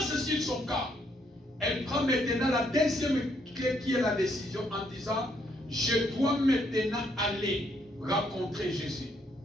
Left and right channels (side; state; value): both; normal; correlation 0.72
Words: sur son cas, elle prend maintenant la deuxième clé qui est la décision en disant, je dois maintenant aller rencontrer Jésus.